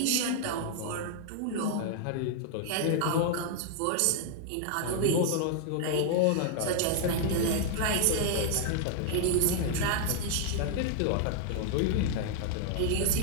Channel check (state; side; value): different; both; correlation 0.00